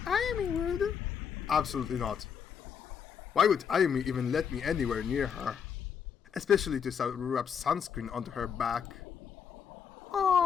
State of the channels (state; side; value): quieter; right; 7.3 dB